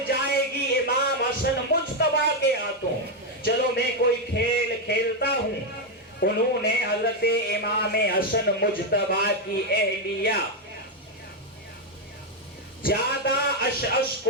جائے گی امام حسن مجتبیٰ کے ہاتھوں، چلو میں کوئی کھیل کھیلتا ہوں۔ انہوں نے حضرت امام حسن مجتبیٰ کی اہلیہ زیادہ اشعث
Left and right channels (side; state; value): both; normal; correlation 0.04